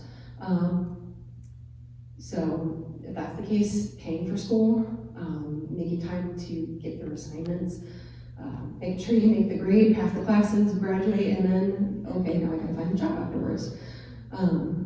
So if that's the case, paying for school, making time to get your assignments, making sure you make the grade, pass the classes, graduate, and then, okay, now I gotta find a job afterwards.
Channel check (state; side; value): identical; both; correlation 1.00